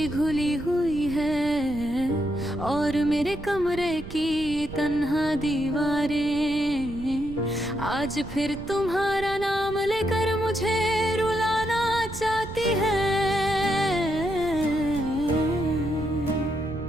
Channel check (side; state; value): right; noise; rumble, 12 dB below the sound